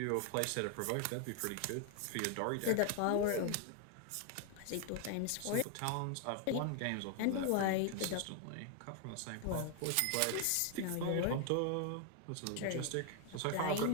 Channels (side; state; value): both; different; correlation 0.00